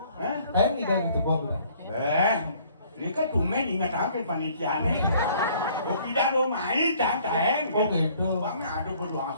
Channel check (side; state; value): both; inverted; correlation -0.59